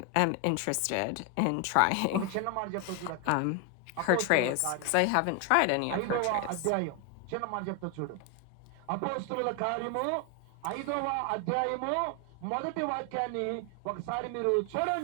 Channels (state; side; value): different; both; correlation 0.01